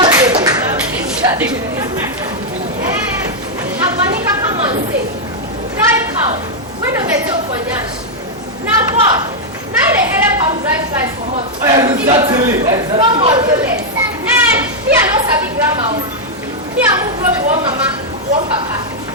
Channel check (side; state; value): both; normal; correlation -0.02